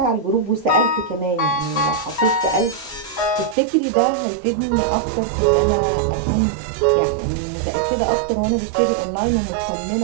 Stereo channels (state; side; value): drops out; left; at 3.6 s